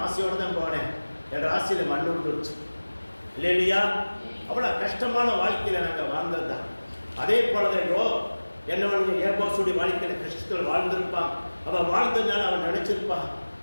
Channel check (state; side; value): inverted; both; correlation -1.00